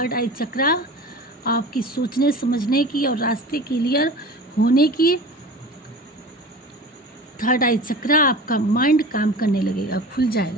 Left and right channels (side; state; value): both; normal; correlation 0.36